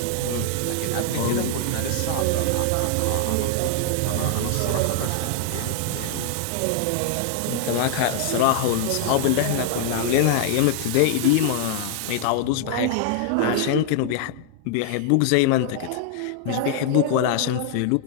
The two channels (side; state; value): both; different; correlation -0.01